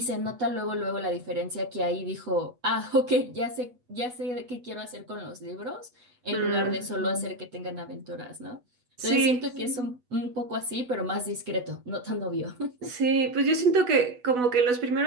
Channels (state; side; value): late; left; 8.1 ms